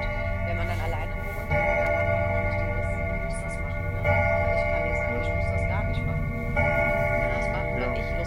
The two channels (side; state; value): both; identical; correlation 1.00